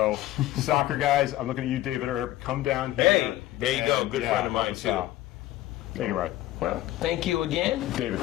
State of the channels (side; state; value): right; quieter; 15.1 dB